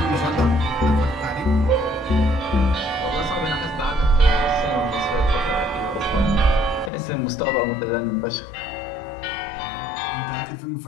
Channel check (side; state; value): right; drops out; at 6.9 s